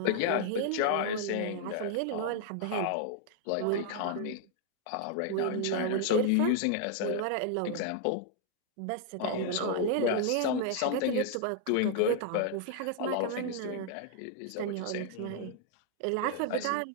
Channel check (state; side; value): different; both; correlation 0.00